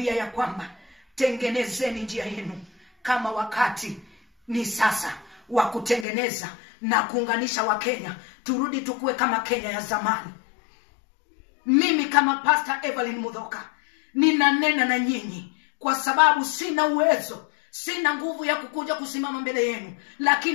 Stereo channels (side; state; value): right; drops out; at 6.1 s